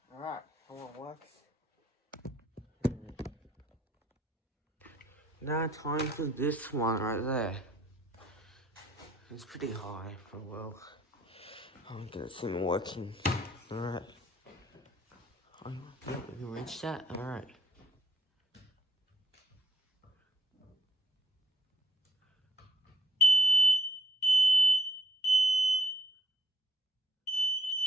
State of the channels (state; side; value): normal; both; correlation 0.66